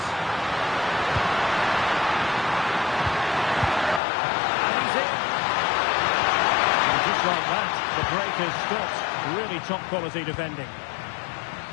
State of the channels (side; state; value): right; drops out; at 4.0 s